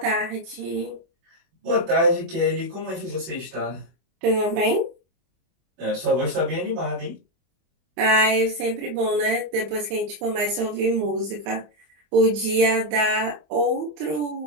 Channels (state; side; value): late; left; 24 ms